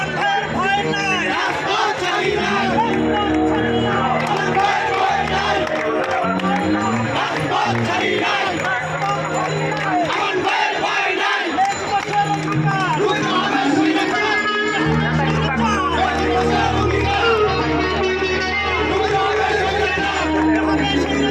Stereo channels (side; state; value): both; identical; correlation 1.00